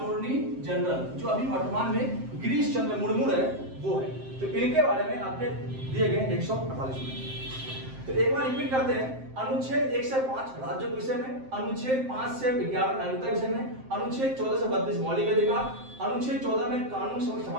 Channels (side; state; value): left; late; 7.6 ms